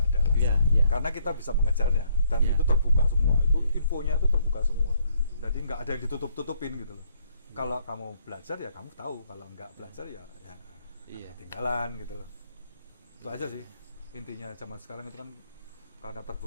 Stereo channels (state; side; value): inverted; both; correlation -0.69